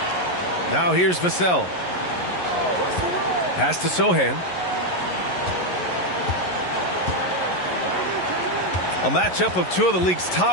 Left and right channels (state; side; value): late; right; 11 ms